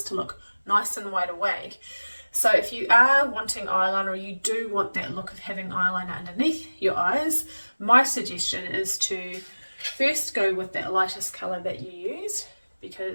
to look nice and wide awake. So if you are wanting eyeliner, or you do want that look of having eyeliner underneath your eyes, my suggestion is to first go with that lightest colour that you use,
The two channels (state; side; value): inverted; both; correlation -1.00